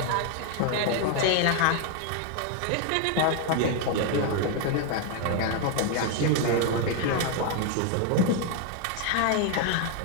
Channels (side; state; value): both; different; correlation 0.00